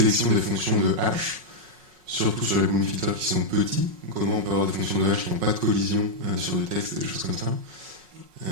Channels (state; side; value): late; left; 5.5 ms